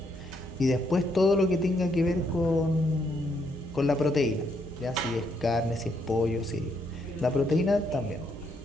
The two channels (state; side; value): normal; both; correlation 0.74